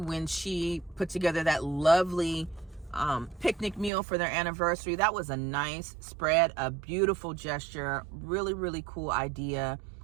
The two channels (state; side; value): drops out; left; at 3.9 s